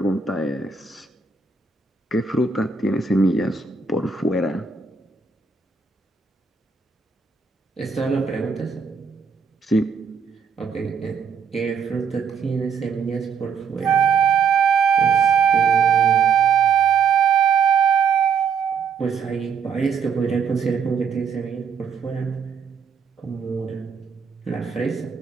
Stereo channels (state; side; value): quieter; left; 6.0 dB